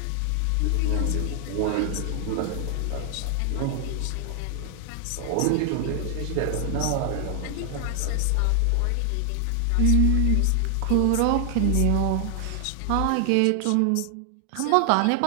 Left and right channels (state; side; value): different; both; correlation 0.00